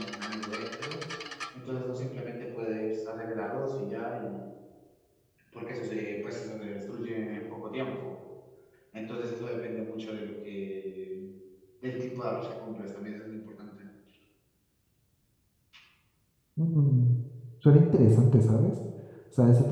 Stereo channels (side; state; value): both; identical; correlation 1.00